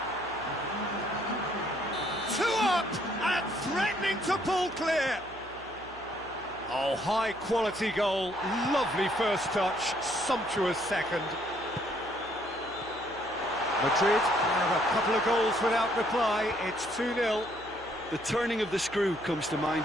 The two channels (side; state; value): right; noise; hum, 20 dB below the sound